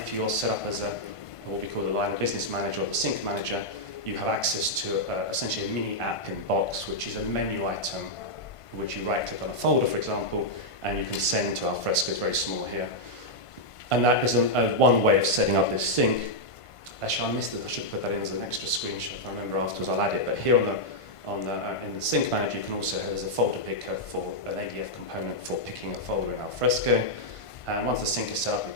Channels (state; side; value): late; right; 1.5 ms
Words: you're set up as what we call the line of business manager or the sync manager, you have access to essentially a mini app in box, which is a menu item, which you right click on a folder, for example, and you can send to Alfresco. It's very small here. And that is one way of setting up this sync. Actually, I missed it. I should put that in as an extra screenshot. If I remember afterwards, I'll add it. But here in the sync manager, you can also there's a folder picker for an ADF component for picking a folder in Alfresco. And once the sync is set up, it